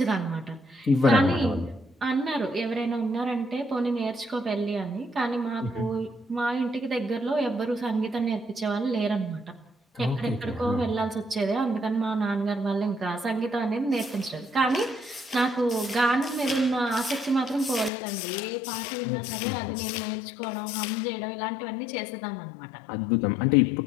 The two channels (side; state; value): right; drops out; at 17.9 s